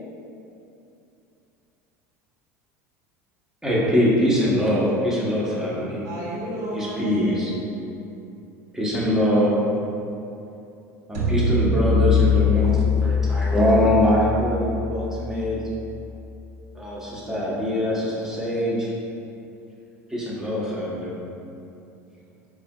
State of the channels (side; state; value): both; normal; correlation 0.46